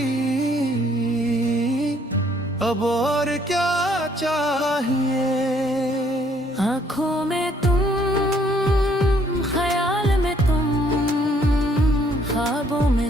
अब और क्या चाहिए। आँखों में तुम, ख्याल में तुम, ख्वाबों में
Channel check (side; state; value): both; normal; correlation 0.65